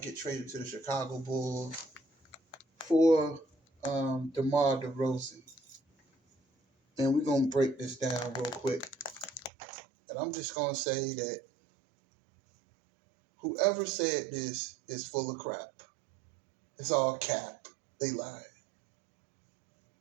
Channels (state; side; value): drops out; left; at 9.5 s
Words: get traded to the Chicago Bulls for DeMar DeRozan, and we're gonna break this down real quick, and I'm just gonna say that whoever said this is full of crap. It's all cap. They lied.